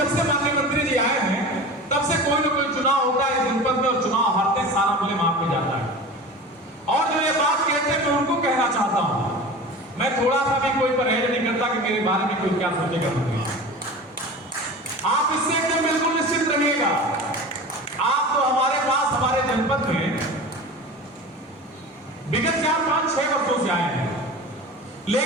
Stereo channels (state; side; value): normal; both; correlation 0.34